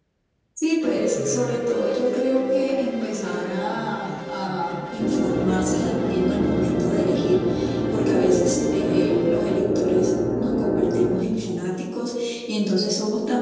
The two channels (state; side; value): identical; both; correlation 1.00